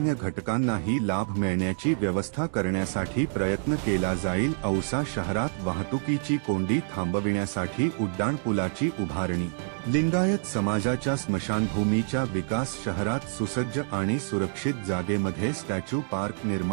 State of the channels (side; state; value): left; silent; digital silence